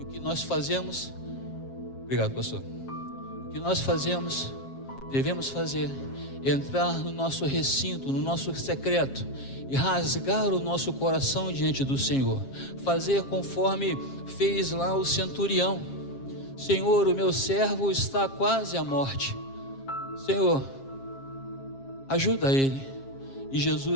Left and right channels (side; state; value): right; late; 7.4 ms